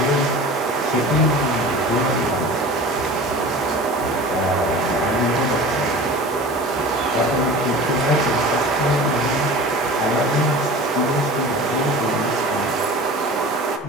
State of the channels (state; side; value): normal; both; correlation 0.38